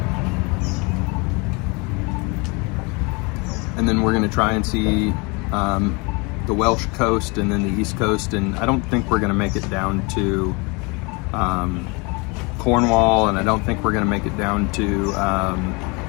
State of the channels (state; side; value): quieter; right; 29.0 dB